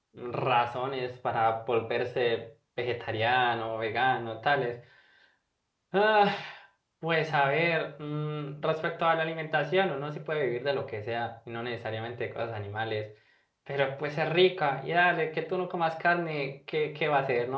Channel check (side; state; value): both; identical; correlation 1.00